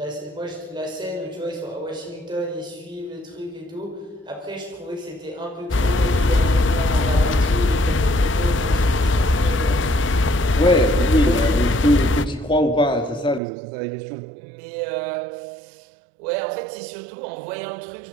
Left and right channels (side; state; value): left; drops out; at 13.4 s